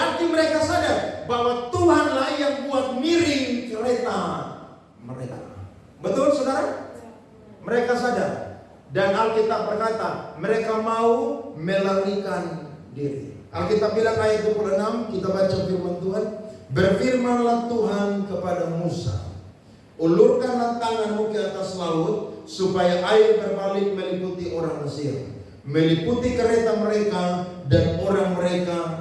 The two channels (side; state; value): both; identical; correlation 1.00